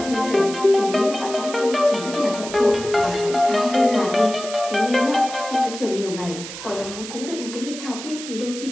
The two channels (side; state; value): right; noise; hiss, 11 dB below the sound